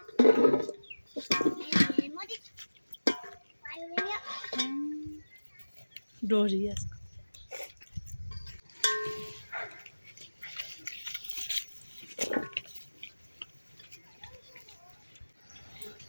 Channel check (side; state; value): both; inverted; correlation -1.00